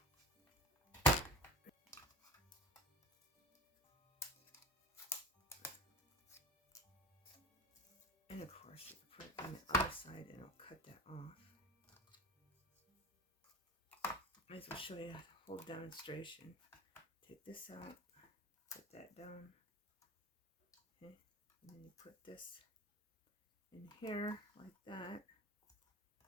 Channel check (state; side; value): normal; both; correlation 0.33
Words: And of course you can put it on the other side and I'll cut that off. Might as well show you the whole demonstration. Take this out, put that down. Okay, and then you put this in here like that